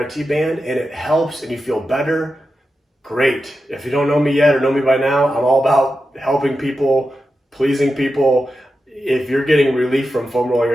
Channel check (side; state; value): both; normal; correlation 0.90